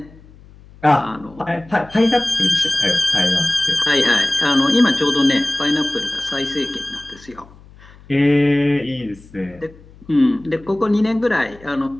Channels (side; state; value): left; noise; hum, 23 dB below the sound